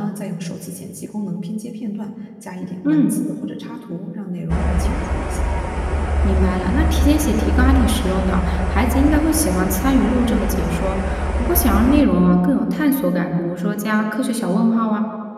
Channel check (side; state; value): both; identical; correlation 1.00